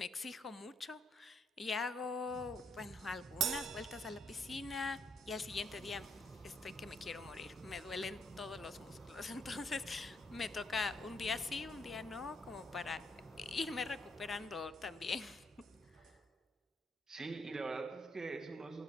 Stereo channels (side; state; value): both; normal; correlation 0.73